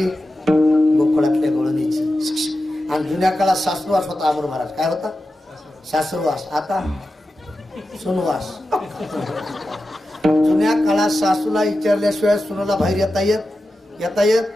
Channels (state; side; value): normal; both; correlation 0.92